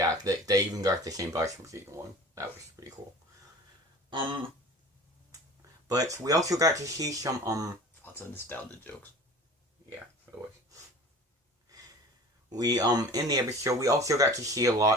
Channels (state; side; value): normal; both; correlation 0.42